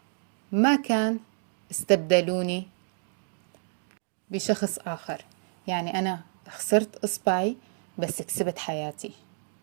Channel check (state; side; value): silent; left; digital silence